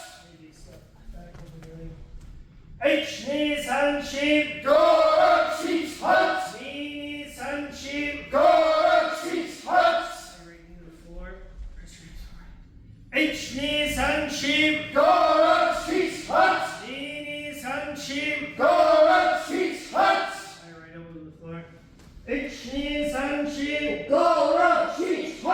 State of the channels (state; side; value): identical; both; correlation 1.00